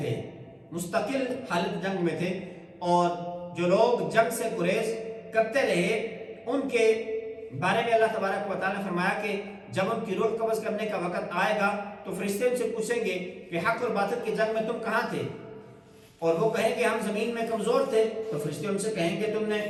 میں تھے اور جو لوگ جنگ سے گریز کرتے رہے ان کے بارے میں اللہ تبارک و تعالیٰ نے فرمایا کہ جب ان کی روح قبض کرنے کا وقت آئے گا تو فرشتے ان سے پوچھیں گے کہ حق اور باطل کی جنگ میں تم کہاں تھے، اور وہ کہیں کہ ہم زمین میں کمزور تھے، تو فرشتے ان سے کہیں گے تم نے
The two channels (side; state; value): both; identical; correlation 1.00